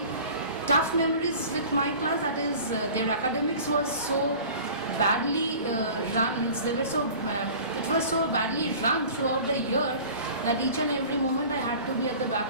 tough memories with my class. That is, their academics was so badly run. Means they were so it was so badly run throughout the year that each and every moment I had to be at the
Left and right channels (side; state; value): both; inverted; correlation -0.42